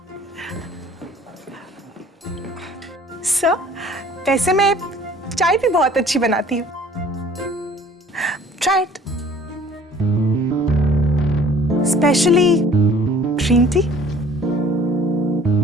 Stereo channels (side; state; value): both; normal; correlation 0.52